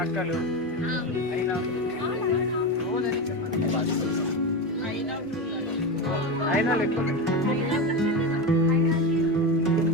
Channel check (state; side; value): normal; both; correlation 0.18